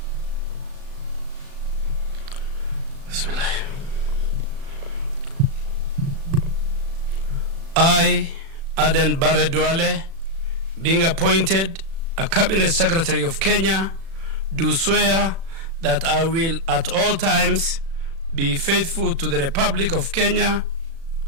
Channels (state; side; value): late; left; 36 ms